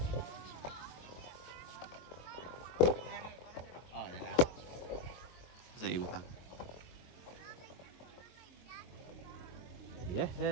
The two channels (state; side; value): late; right; 23 ms